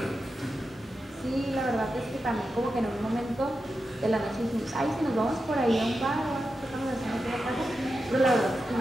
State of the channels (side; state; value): both; normal; correlation 0.90